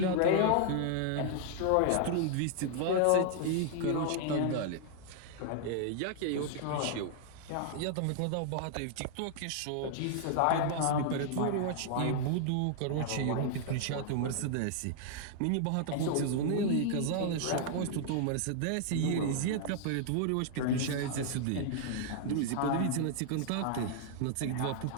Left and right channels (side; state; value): both; different; correlation -0.01